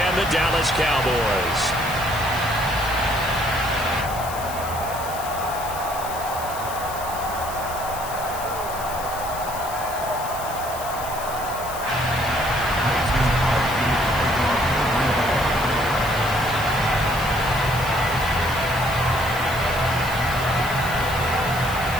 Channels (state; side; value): noise; left; hiss, 12 dB below the sound